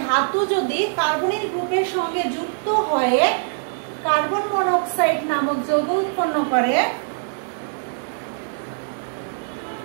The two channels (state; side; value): silent; left; digital silence